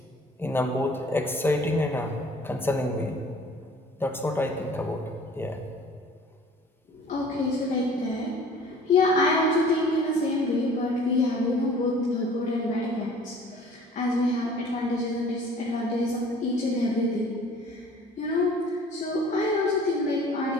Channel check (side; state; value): both; normal; correlation 0.50